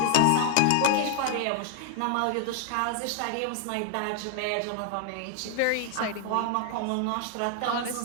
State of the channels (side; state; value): both; different; correlation 0.00